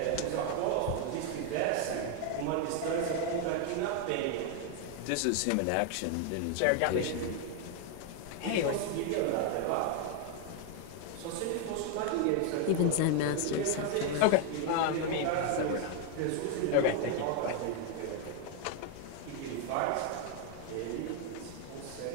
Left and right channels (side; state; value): both; different; correlation 0.01